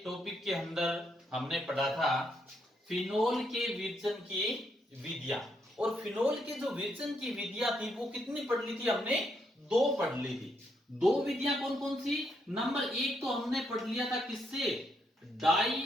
topic के अंदर हमने पढ़ा था फिनोल के विरजन की विधियां। और फिनोल के जो विरजन की विधियां थी वो कितनी पढ़ ली थी हमने? दो पढ़ ली थी। दो विधियां कौन कौन सी? नंबर एक तो हमने पढ़ लिया था किससे?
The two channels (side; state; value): both; normal; correlation 0.77